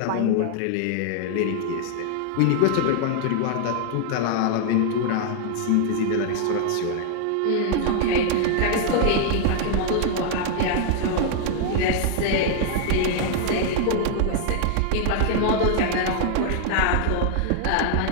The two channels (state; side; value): different; both; correlation 0.00